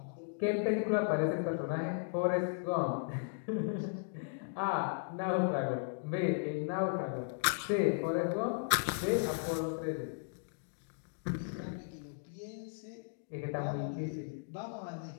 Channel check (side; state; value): right; silent; digital silence